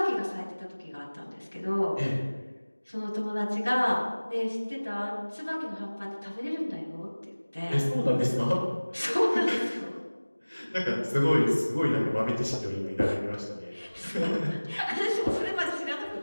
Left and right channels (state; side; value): inverted; both; correlation -1.00